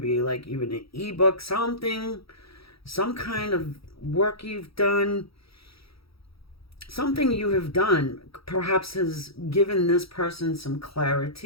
be like even an ebook, something, some kind of work you've done. Something you have done perhaps has given this person some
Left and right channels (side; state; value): right; late; 0.76 ms